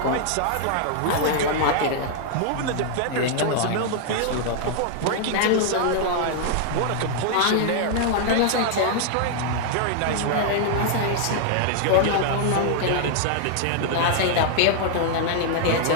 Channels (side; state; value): both; different; correlation 0.00